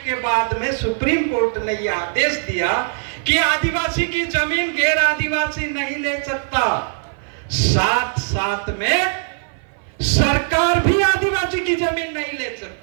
के बाद में सुप्रीम कोर्ट ने यह आदेश दिया कि आदिवासी की जमीन गैर आदिवासी नहीं ले सकता, साथ साथ में सरकार भी आदिवासी की जमीन नहीं ले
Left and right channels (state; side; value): silent; left; 57 dB below the other